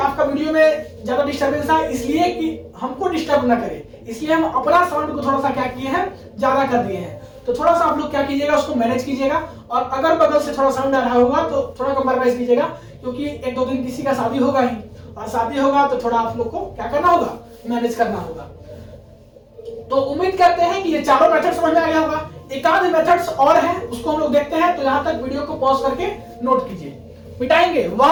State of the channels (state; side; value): identical; both; correlation 1.00